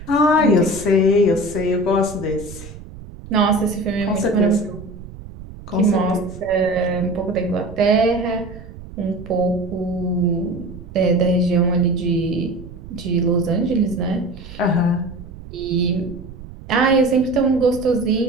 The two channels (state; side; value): noise; right; rumble, 15 dB below the sound